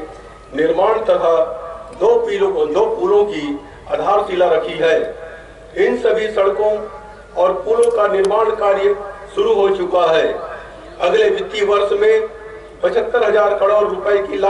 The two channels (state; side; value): identical; both; correlation 1.00